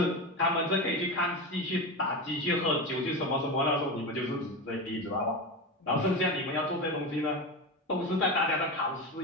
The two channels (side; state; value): both; normal; correlation 0.21